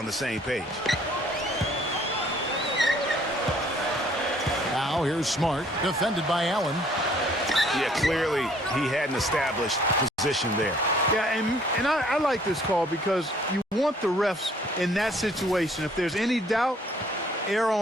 the same page. Now here's Smart, defended by Allen. Yeah, clearly he had an established position there. Yeah, and I like this call, because you want the refs in that situation, if there's any doubt, err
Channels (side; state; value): both; normal; correlation 0.60